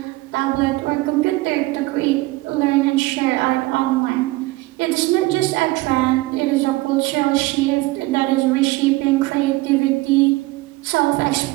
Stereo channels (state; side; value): quieter; left; 20.6 dB